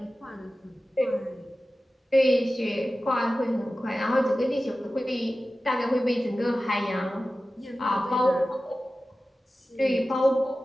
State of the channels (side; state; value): both; normal; correlation 0.95